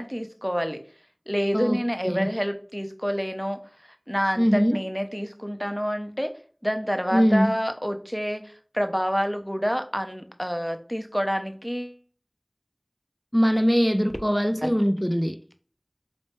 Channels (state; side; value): identical; both; correlation 1.00